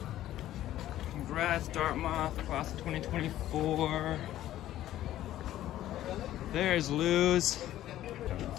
Congrats, Dartmouth, class of 2024. There's Lou's.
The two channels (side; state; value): right; quieter; 13.4 dB